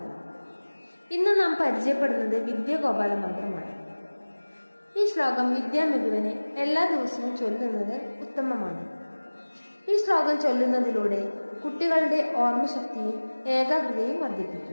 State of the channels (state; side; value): inverted; both; correlation -1.00